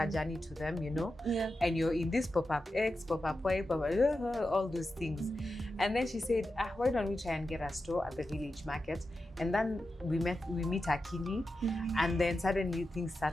journey to them, you know. And you're in this pop-up X, pop-up Y, pop-up, all those things. And then she said, why don't we try and get a store at the village market? And then we meet Akili, and then suddenly things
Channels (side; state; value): both; normal; correlation 0.91